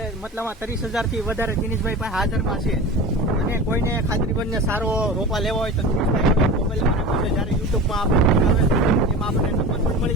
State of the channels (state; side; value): normal; both; correlation 0.32